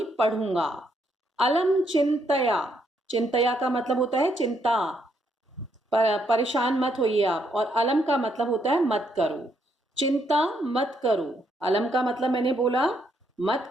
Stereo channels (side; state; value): both; normal; correlation 0.74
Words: पढ़ूंगा। अलम चिंतया, चिंतया का मतलब होता है चिंता, परेशान मत होइए आप, और अलम का मतलब होता है मत करो। चिंता मत करो, अलम का मतलब मैंने बोला मत